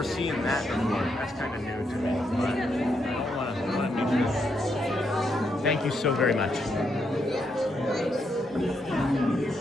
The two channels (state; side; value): normal; both; correlation 0.79